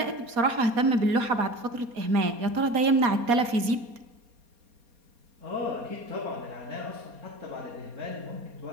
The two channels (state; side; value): late; left; 4.2 ms